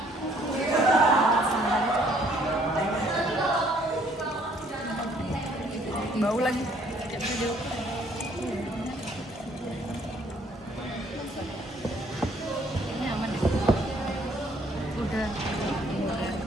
Bau lagi. Ini aman ya? Udah.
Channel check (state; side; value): normal; both; correlation 0.63